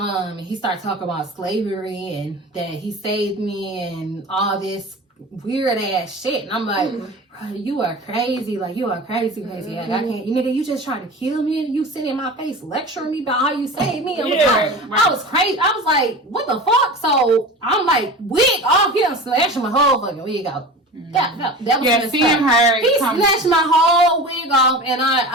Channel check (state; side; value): normal; both; correlation 0.34